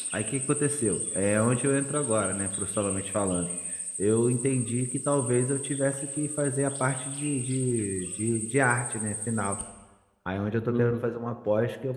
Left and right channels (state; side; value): identical; both; correlation 1.00